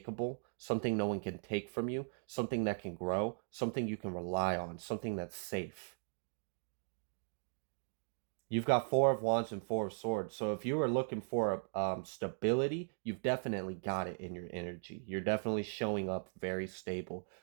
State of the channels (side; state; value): left; silent; digital silence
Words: something no one can take from you, something that can grow, something you can rely on, something that's safe. You've got 4 of Wands and 4 of Swords. So if you are looking for stability, you've definitely got it in your energy. You're definitely showing up very stable.